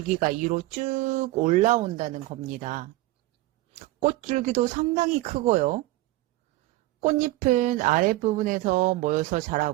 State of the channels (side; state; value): left; quieter; 18.2 dB